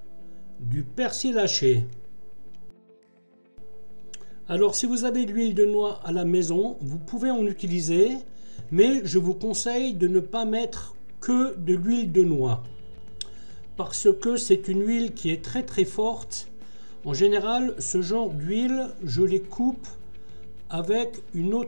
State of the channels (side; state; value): both; inverted; correlation -1.00